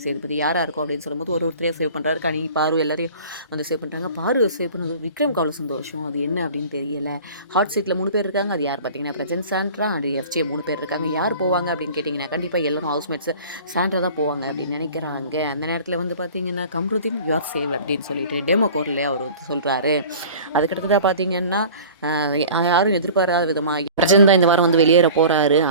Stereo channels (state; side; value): inverted; both; correlation -0.43